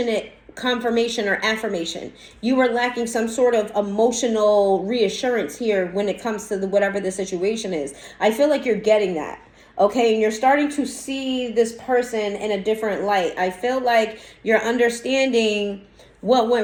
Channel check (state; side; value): identical; both; correlation 1.00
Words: confirmation or affirmation. You were lacking some sort of emotional reassurance here when it comes to whatever the situation is. I feel like you're getting that. Okay, and you're starting to see this person in a different light. I feel like you're understanding what